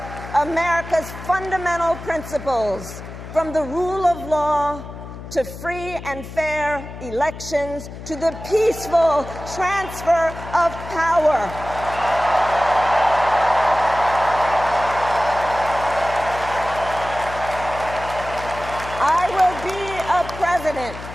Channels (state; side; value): noise; left; hum, 12 dB below the sound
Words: America's fundamental principles, from the rule of law to free and fair elections, to the peaceful transfer of power. I will be a president